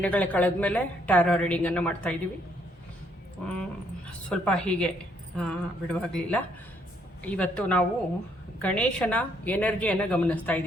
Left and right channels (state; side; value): normal; both; correlation 0.70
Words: ಕಳೆದ ಮೇಲೆ ಟ್ಯಾರೋ ರೀಡಿಂಗನ್ನು ಮಾಡ್ತಾಯಿದ್ದೀವಿ. ಸ್ವಲ್ಪ ಹೀಗೆ ಬಿಡುವಾಗಲಿಲ್ಲ. ಇವತ್ತು ನಾವು ಗಣೇಶನ ಎನರ್ಜಿಯನ್ನು ಗಮನಿಸ್ತಾ